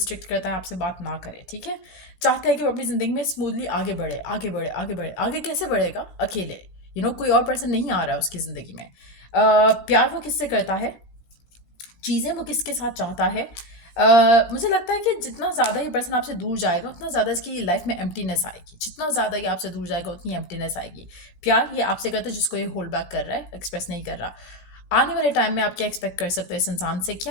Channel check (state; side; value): late; right; 16 ms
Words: करता है, आपसे बात ना करे, ठीक है। चाहता है कि वो अपनी ज़िंदगी में स्मूथली आगे बढ़े, आगे बढ़े, आगे बढ़े। आगे कैसे बढ़ेगा? अकेले, कोई और पर्सन नहीं आ रहा है उसकी ज़िंदगी में। प्यार वो किससे करता है, चीज़ें वो किसके साथ चाहता है। मुझे लगता है कि जितना ज़्यादा ये पर्सन आपसे दूर जाएगा उतना ज़्यादा इसकी लाइफ में एम्प्टीनेस आएगी। जितना ज़्यादा ये आपसे दूर जाएगा उतनी एम्प्टीनेस आएगी। प्यार ये आपसे करता है जिसको ये होल्ड बैक कर रहा है, एक्सप्रेस नहीं कर रहा। आने वाले टाइम में आप क्या एक्सपेक्ट कर सकते हो इस इंसान से?